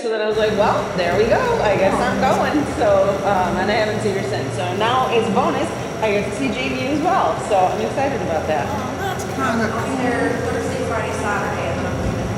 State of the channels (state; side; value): identical; both; correlation 1.00